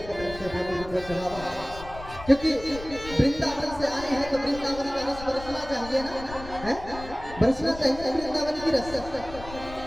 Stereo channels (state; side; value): noise; left; rumble, 14 dB below the sound